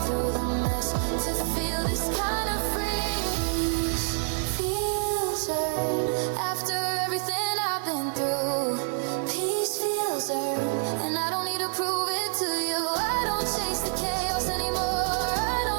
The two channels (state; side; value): silent; left; 60 dB below the other